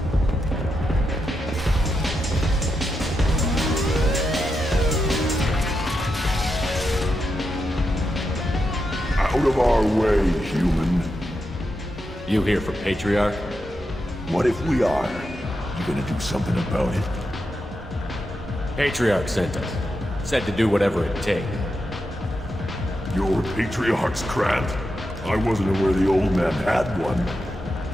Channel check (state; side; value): normal; both; correlation 0.86